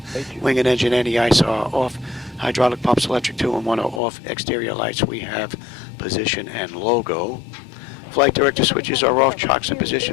Wing and engine anti-ice are off. Hydraulic pumps, electric 2 and 1 are off. Exterior lights, we have position and logo. Flight director switches are off. Chocks in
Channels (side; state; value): right; drops out; at 4.0 s